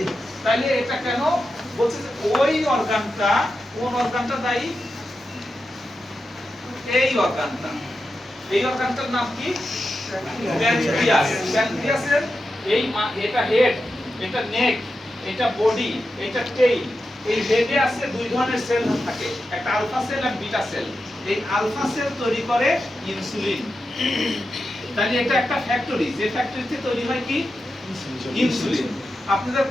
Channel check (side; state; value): both; normal; correlation 0.89